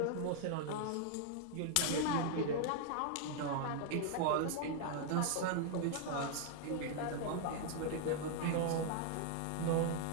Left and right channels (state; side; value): different; both; correlation 0.00